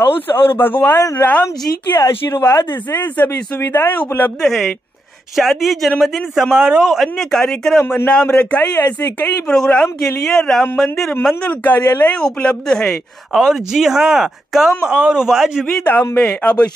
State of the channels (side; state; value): both; normal; correlation 0.84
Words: और भगवान राम जी के आशीर्वाद से सभी सुविधाएं उपलब्ध है। शादी, जन्मदिन समारोह, अन्य कार्यक्रम, नाम रखाई, ऐसे कई प्रोग्राम के लिए राम मंदिर मंगल कार्यालय उपलब्ध है। और जी हाँ, कम और वाजिबी दाम में। अब